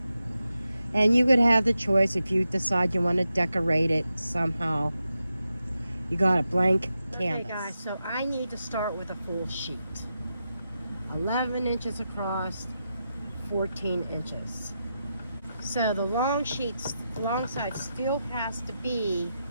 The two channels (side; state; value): both; inverted; correlation -0.88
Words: And you could have the choice if you decide you want to decorate it somehow. You got a blank canvas. Okay guys, so I need to start with a full sheet. 11 inches across, 14 inches. So the long side still has to be